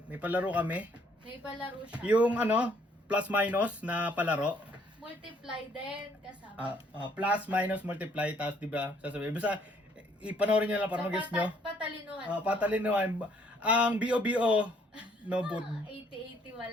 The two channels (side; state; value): both; normal; correlation 0.65